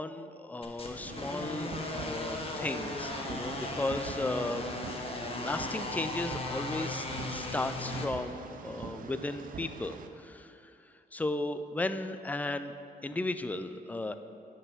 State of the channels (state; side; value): normal; both; correlation 0.64